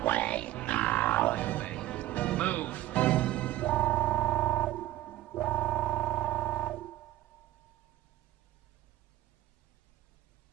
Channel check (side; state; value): left; quieter; 14.9 dB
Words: away now. Move.